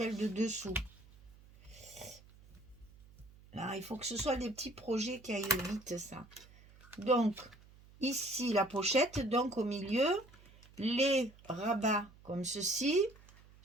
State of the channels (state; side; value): noise; right; hum, 24 dB below the sound